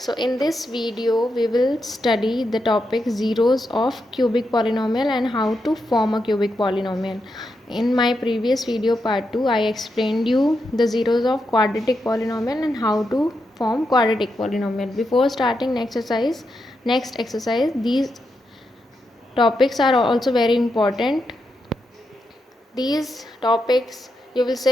in this video we will study the topic zeros of cubic polynomial and how to form a cubic polynomial. In my previous video part 2 I explained you the zeros of quadratic polynomial and how to form quadratic polynomial. Before starting next exercise, these topics are also very important. These topics you will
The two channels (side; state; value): both; normal; correlation 0.85